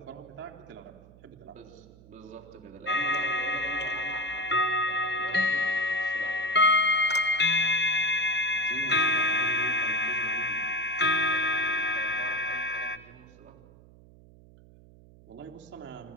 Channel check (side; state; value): right; noise; hum, 23 dB below the sound